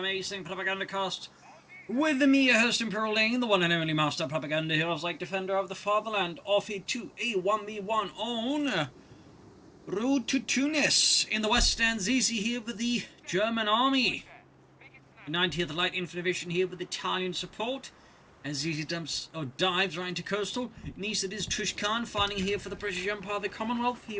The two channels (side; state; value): both; identical; correlation 1.00